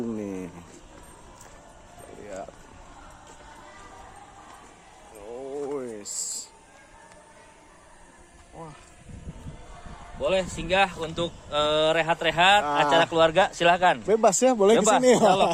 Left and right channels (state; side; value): identical; both; correlation 1.00